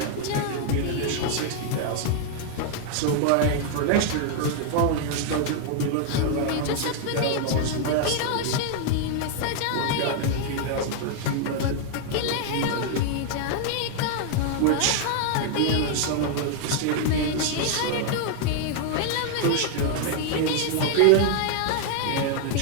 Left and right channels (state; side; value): different; both; correlation 0.00